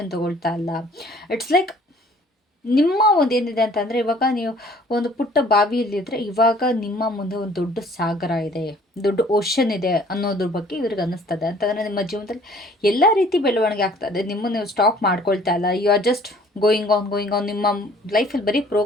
ತೊಗೊಳ್ತಾ ಇಲ್ಲ. ಇಟ್ಸ್ ಲೈಕ್ ನಿಮ್ಮ ಒಂದು ಏನಿದೆ ಅಂತಂದರೆ, ಇವಾಗ ನೀವು ಒಂದು ಪುಟ್ಟ ಬಾವಿಯಲ್ಲಿದ್ದರೆ ಇವಾಗ ನಿಮ್ಮ ಮುಂದೆ ಒಂದು ದೊಡ್ಡ ಸಾಗರ ಇದೆ, ದೊಡ್ಡ ಓಷನ್ ಇದೆ ಅನ್ನೋದ್ರ ಬಗ್ಗೆ ಇವ್ರಿಗೆ ಅನ್ನಿಸ್ತದೆ. ಅಂತಂದರೆ ನಿಮ್ಮ ಜೀವನದಲ್ಲಿ ಎಲ್ಲ ರೀತಿ ಬೆಳವಣಿಗೆ ಆಗ್ತದೆ, ನಿಮ್ಮನ್ನು ನೀವು ಸ್ಟಾಪ್ ಮಾಡ್ಕೊಳ್ತಾ ಇಲ್ಲ, you are just going on, ನಿಮ್ಮ ಲೈಫಲ್ಲಿ ಬರೀ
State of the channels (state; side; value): normal; both; correlation 0.55